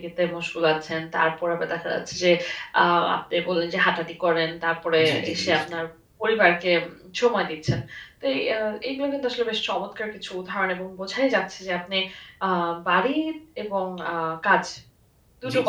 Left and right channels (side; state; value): both; identical; correlation 1.00